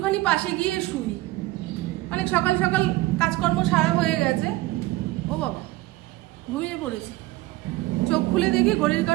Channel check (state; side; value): quieter; left; 18.7 dB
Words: পাশে গিয়ে শুই। অনেক সকাল সকাল কাজকর্ম সারা হয়ে গেছে। ও বাবা, ঘুমিয়ে পড়েছি। চোখ খুলে দেখি ঘড়ির